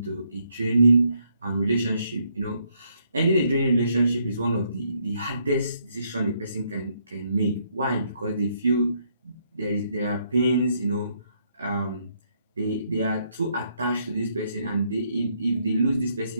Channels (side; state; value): both; inverted; correlation -0.73